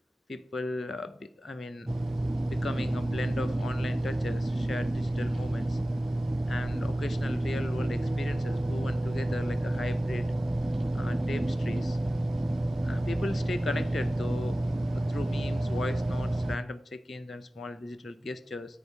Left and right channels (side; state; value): both; normal; correlation 0.96